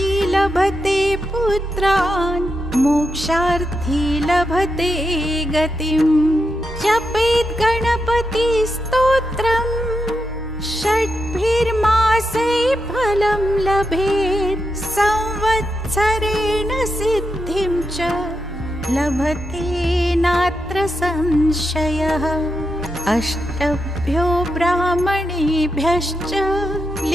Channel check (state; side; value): normal; both; correlation 0.86